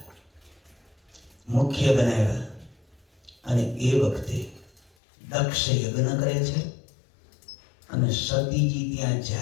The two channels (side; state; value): right; drops out; at 4.9 s